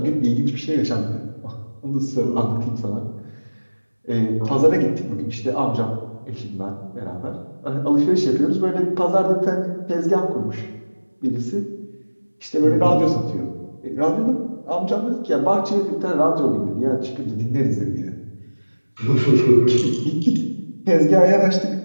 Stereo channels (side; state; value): both; inverted; correlation -1.00